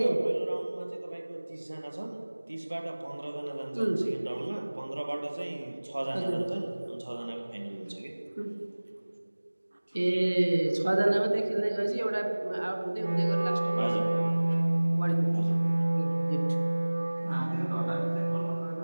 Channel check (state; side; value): inverted; both; correlation -1.00